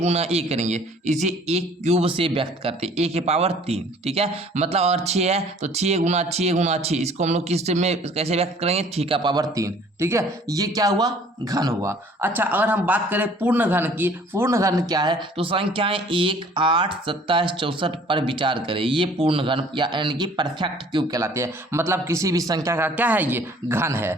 ए करेंगे। इसे एक क्यूब से व्यक्त करते हैं, ए के पावर 3। ठीक है, मतलब अगर 6 है तो 6 गुना 6, इसको हम लोग किस में कैसे व्यक्त करेंगे, 6 का पावर 3। ठीक है, ये क्या हुआ, घन हुआ। अच्छा, अगर हम बात करें पूर्ण घन की, पूर्ण घन क्या है, तो संख्याएं 1, 8, 27, 64 पर विचार करें। ये पूर्ण घन यानी कि परफेक्ट क्यूब कहलाते हैं। मतलब किसी भी संख्या का क्या है, ये घन है।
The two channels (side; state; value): both; normal; correlation 0.54